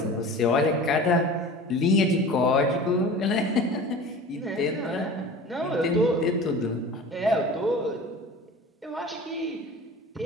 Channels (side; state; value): both; normal; correlation 0.38